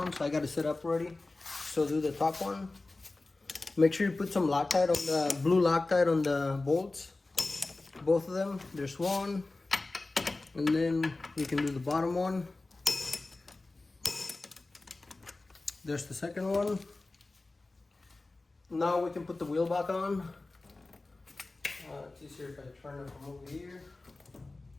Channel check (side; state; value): right; quieter; 3.2 dB